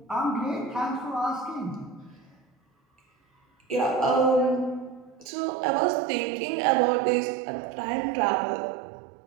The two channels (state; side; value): drops out; left; at 5.3 s